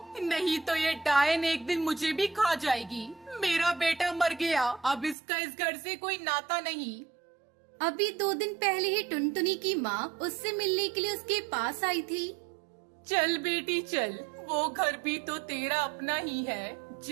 नहीं तो ये डायन एक दिन मुझे भी खा जाएगी। मेरा बेटा मर गया, अब इसका इस घर से कोई नाता नहीं। अभी 2 दिन पहले ही टुनटुनी की माँ उससे मिलने के लिए उसके पास आई थी। चल बेटी चल, वो घर भी तो तेरा अपना ही है।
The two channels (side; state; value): left; drops out; at 5.2 s